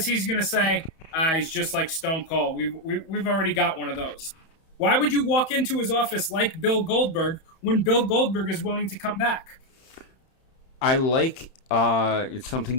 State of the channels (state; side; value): late; right; 31 ms